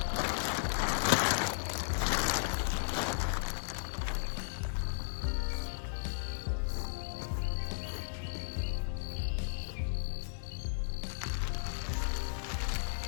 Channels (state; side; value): silent; right; 54 dB below the other